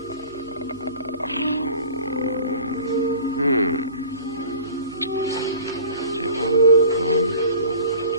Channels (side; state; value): both; inverted; correlation -0.44